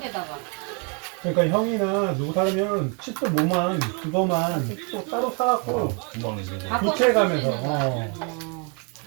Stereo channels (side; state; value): left; quieter; 35.7 dB